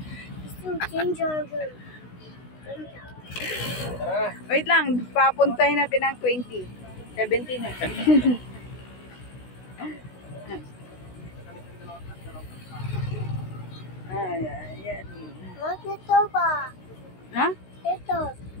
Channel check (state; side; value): late; right; 16 ms